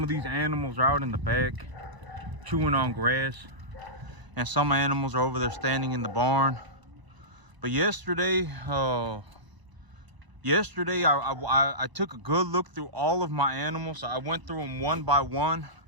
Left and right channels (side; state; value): left; late; 1.0 ms